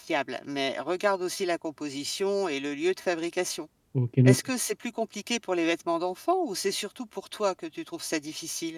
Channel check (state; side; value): identical; both; correlation 1.00